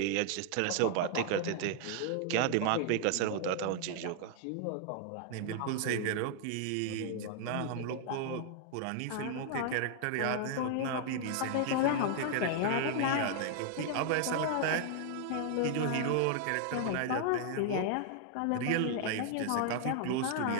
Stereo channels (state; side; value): different; both; correlation 0.00